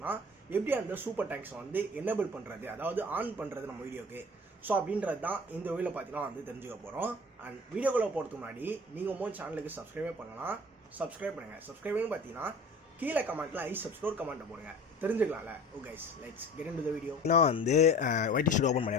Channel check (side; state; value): both; normal; correlation 0.42